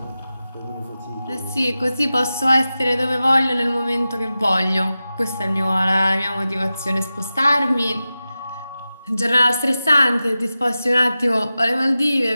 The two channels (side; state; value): both; inverted; correlation -0.94